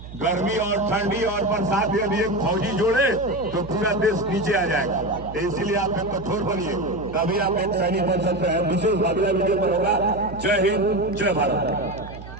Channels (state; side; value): noise; right; hum, 14 dB below the sound